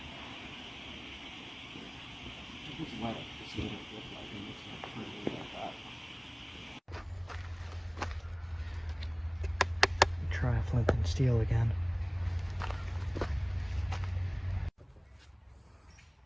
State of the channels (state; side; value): identical; both; correlation 1.00